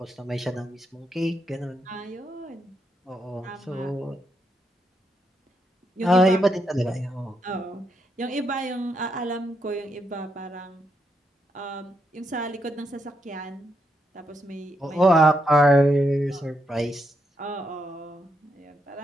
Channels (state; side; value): normal; both; correlation 0.80